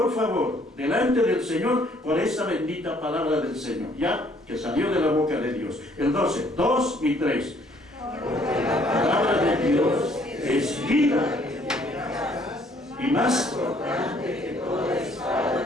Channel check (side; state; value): both; normal; correlation 0.63